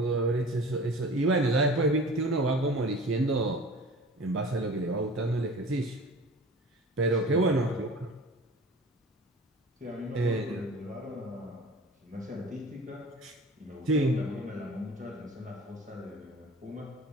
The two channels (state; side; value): normal; both; correlation 0.40